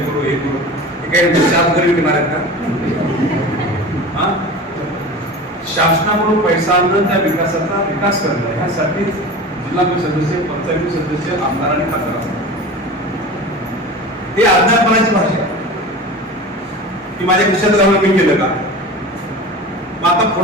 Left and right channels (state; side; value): normal; both; correlation 0.34